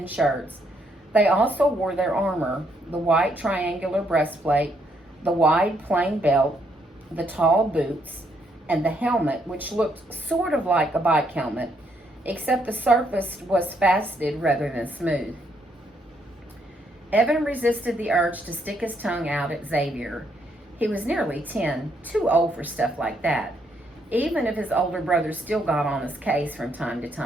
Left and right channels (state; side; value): normal; both; correlation 0.73